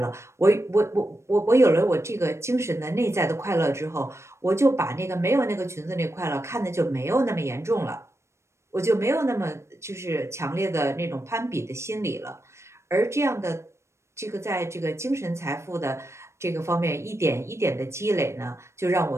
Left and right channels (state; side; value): late; left; 0.13 ms